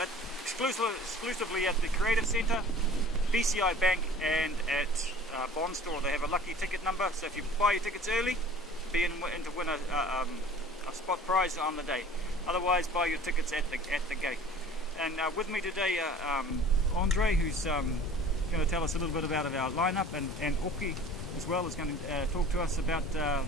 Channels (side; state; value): both; normal; correlation 0.46